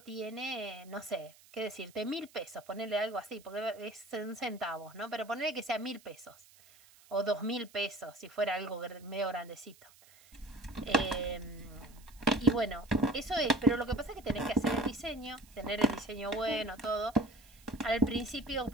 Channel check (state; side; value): noise; right; hiss, 25 dB below the sound